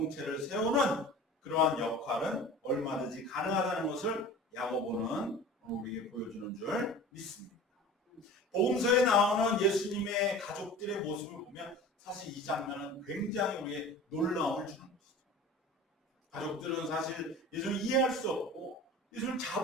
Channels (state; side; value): normal; both; correlation 0.39